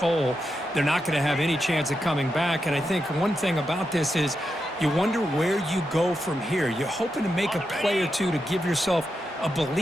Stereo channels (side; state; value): both; normal; correlation 0.86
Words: They're not going to have any chance of coming back. And I think one thing about this is you wonder where you go from here. You're hoping to make a play or two to give yourself a